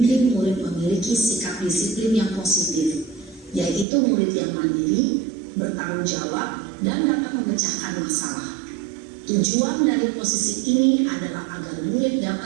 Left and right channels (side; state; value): left; drops out; at 3.9 s